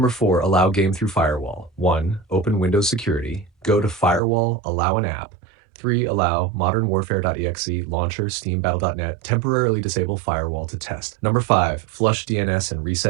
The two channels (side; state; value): left; drops out; at 4.2 s